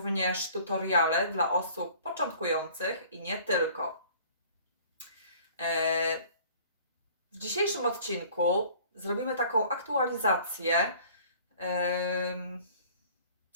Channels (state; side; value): inverted; both; correlation -0.51